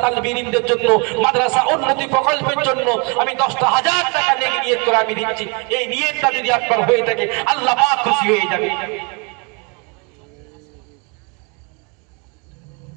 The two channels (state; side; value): quieter; left; 33.3 dB